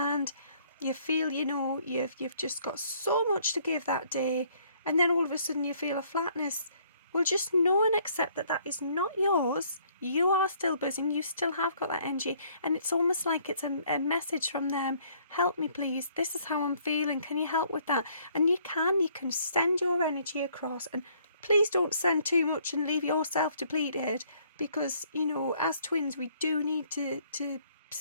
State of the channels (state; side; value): inverted; both; correlation -0.63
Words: you feel, you know, you've just got so much to give that day, and then all of a sudden you feel a flatness. Well, just know and accept that that is not yours. You are still buzzing, you still have got that energy, and it's almost like it's a message from them. Help me please, this is how I'm feeling, can you help with that? And you can send your energy across, and please don't send too much and leave yourself depleted, because, you know, as twins we do need to